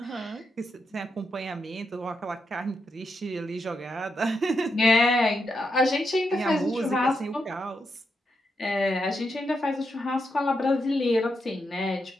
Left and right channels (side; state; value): both; normal; correlation 0.83